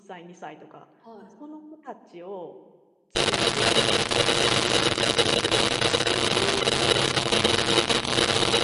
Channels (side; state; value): both; identical; correlation 1.00